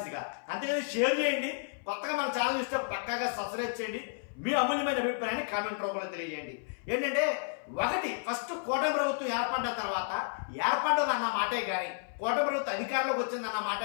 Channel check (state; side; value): silent; right; 57 dB below the other